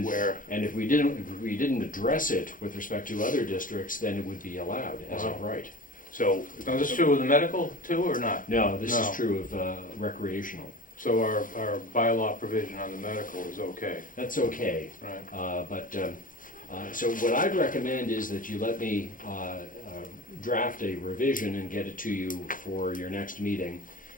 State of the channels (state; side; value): late; right; 0.39 ms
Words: Where? and if we didn't address it with respect to other districts, then it would be allowed as of right. So, Now, is this true with the medical too, or not? No, this No. is true of recreational. So our bylaw provision on the medical is okay, That's okay. right? So what I'd recommend is that you let me draft a revision and get it to you for your next meeting.